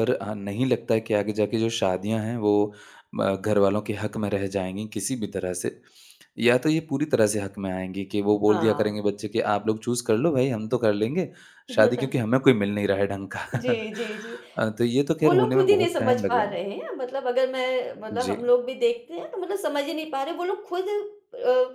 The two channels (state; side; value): identical; both; correlation 1.00